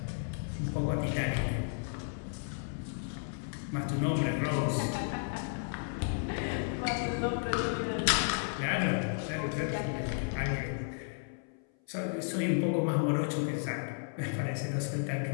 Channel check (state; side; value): silent; right; 56 dB below the other